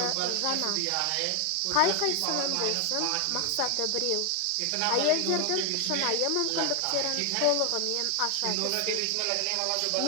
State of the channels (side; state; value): both; different; correlation 0.01